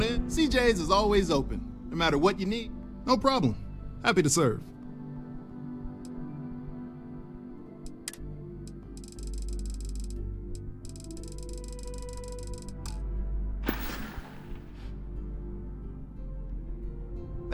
in. CJ's is always open. No matter what you need, no problem. Happy to serve.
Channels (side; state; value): both; identical; correlation 1.00